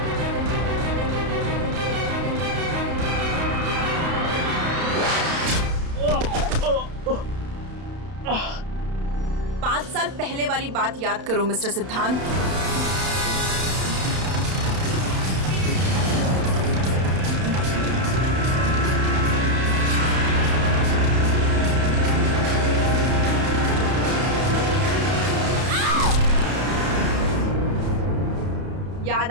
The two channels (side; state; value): left; late; 31 ms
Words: पांच साल पहले वाली बात याद करो मिस्टर सिद्धांत।